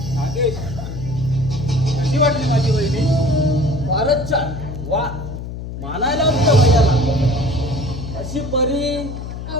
नागेश, कशी वाटली माझी वहिनी? फारच छान. वा, मानायला तुझ्या भैयाला. अशी परी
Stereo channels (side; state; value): left; noise; hum, 8 dB below the sound